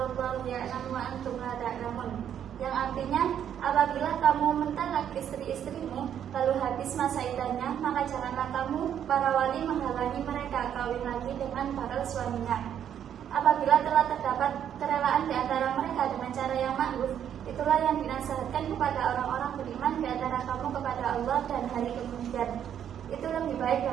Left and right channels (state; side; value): quieter; left; 9.4 dB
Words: wallahu ya'lamu wa antum la ta'lamun. Yang artinya, apabila kamu mentalak istri-istrimu lalu habis masa iddahnya, maka janganlah kamu para wali menghalangi mereka kawin lagi dengan para suaminya. Apabila telah terdapat kerelaan di antara mereka dengan cara yang ma'ruf, itulah yang dinasihatkan kepada orang-orang beriman di antara kamu kepada Allah dan hari kemudian. Itu lebih baik